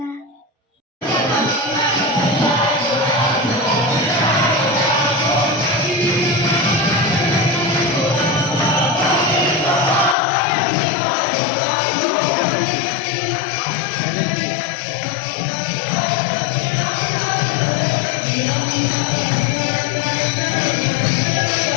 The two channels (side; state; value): right; drops out; at 10.2 s